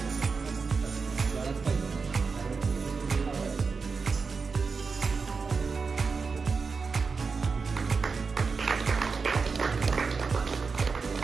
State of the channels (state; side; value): quieter; left; 4.8 dB